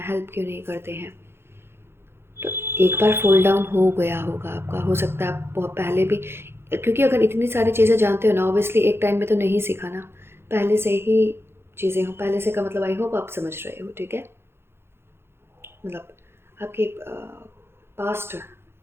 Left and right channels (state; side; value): late; left; 0.12 ms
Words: हेल्प क्यों नहीं करते हैं। तो एक बार फॉल डाउन हो गया होगा आपका, हो सकता है आप बहुत पहले भी, क्योंकि अगर इतनी सारी चीज़ें जानते हो ना, ऑब्वियसली एक टाइम में तो नहीं सीखा ना, पहले से ही चीज़ें हो, पहले से का मतलब आई होप आप समझ रहे हो, ठीक है। मतलब आपके पास्ट